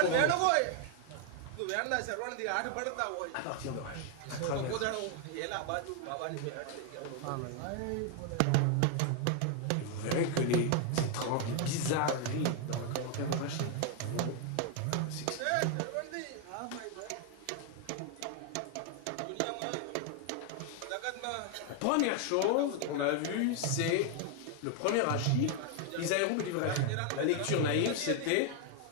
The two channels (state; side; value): different; both; correlation 0.00